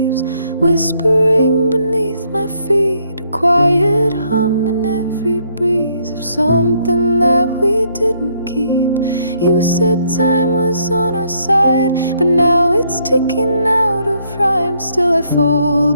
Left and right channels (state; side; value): inverted; both; correlation -0.70